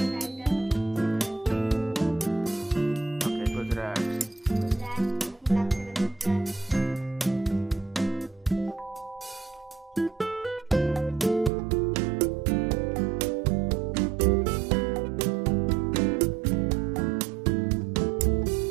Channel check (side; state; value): left; drops out; at 11.5 s